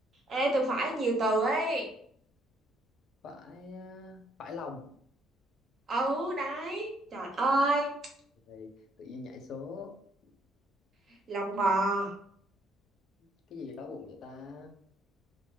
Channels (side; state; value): both; normal; correlation 0.68